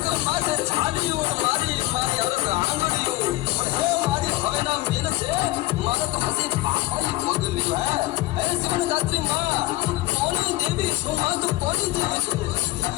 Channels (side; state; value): right; quieter; 18.4 dB